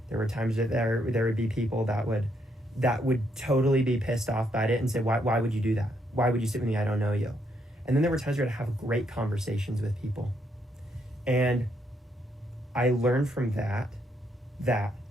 There were times that there would be people that would totally be pissed off by it and say, why would you do that? Why would you sit with me? I don't know you. And then there were times where I'd have great conversations with people. And I learned from that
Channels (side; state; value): both; normal; correlation 0.75